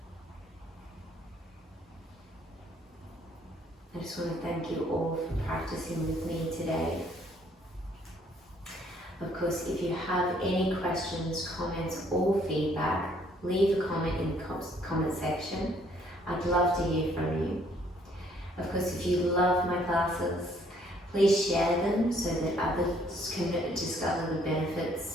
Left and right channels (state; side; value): normal; both; correlation 0.64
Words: I just want to thank you all for practicing with me today. Of course, if you have any questions, comments or feedback, leave a comment in the comment section. I'd love to hear from you. Of course, if you love my classes, please share them so that others can discover the